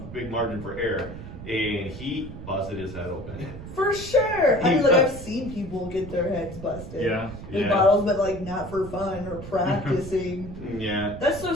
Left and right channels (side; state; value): right; noise; rumble, 12 dB below the sound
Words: big margin for error. And he busted his head open. For sure. I mean, like, I've seen people get their heads busted in bottles, but like not for fun or practicing. Yeah. That's so